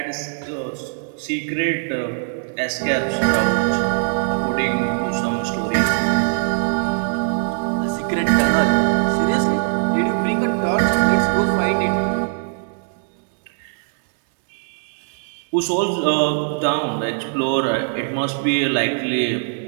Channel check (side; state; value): left; silent; digital silence